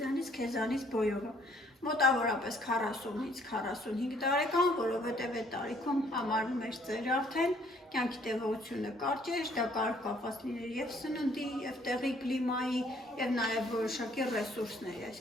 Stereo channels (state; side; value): normal; both; correlation 0.62